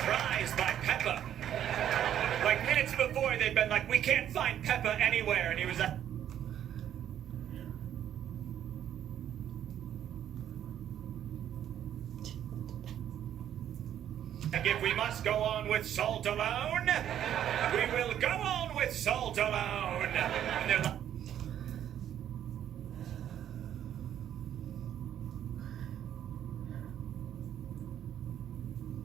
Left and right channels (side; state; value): left; quieter; 10.5 dB